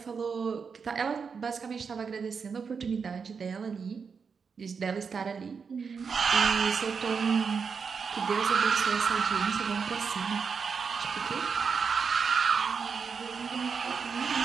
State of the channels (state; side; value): quieter; left; 5.8 dB